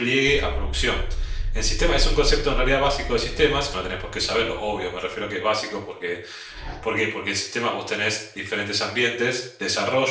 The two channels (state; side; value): identical; both; correlation 1.00